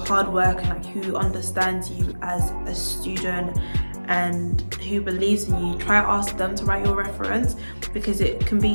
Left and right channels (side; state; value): both; inverted; correlation -1.00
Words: work and like who understands you as a student and who believes in you. Try and ask them to write your reference, because it can